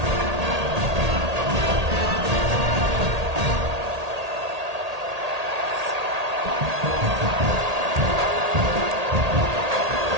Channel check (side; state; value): left; late; 1.8 ms